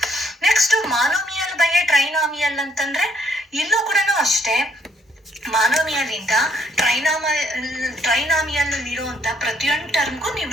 ನೆಕ್ಸ್ಟ್ ಮಾನೋಮಿಯಲ್ ಬೈ ಟ್ರೈನಾಮಿಯಲ್ ಅಂತಂದ್ರೆ ಇಲ್ಲೂ ಕೂಡ ಅಷ್ಟೇ, ಮಾನೋಮಿಯಲ್ ಇಂದ ಟ್ರೈನಾಮಿಯಲ್ ಇರುವಂತ ಪ್ರತಿಯೊಂದು ಟರ್ಮ್ಗೂ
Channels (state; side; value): normal; both; correlation 0.68